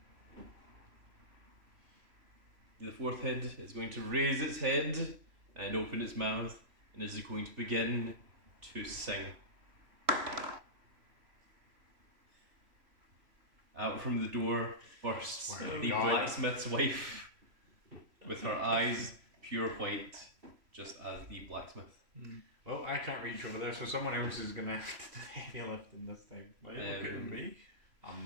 the fourth head is going to raise its head and open its mouth and is going to begin to sing. Out from the door bursts Oh, the God. blacksmith's wife with her eyes pure white, just as the blacksmith. Well, I can't reach over there, so someone else is going to have to do the heavy lifting this time. Why are you looking at me?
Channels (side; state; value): left; late; 3.0 ms